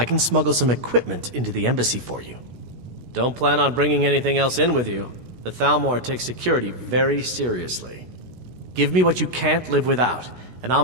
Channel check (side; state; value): left; late; 16 ms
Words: can smuggle some equipment into the embassy for you. Don't plan on bringing anything else in with you. The Thalmor takes security very seriously. Give me what you can't live without, and I'll